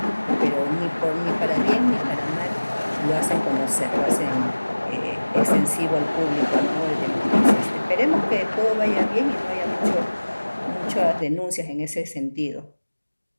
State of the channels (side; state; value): both; inverted; correlation -1.00